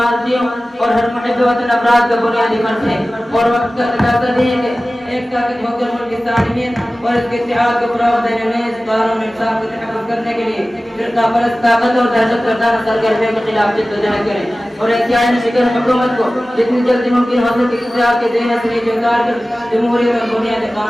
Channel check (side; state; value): both; normal; correlation 0.96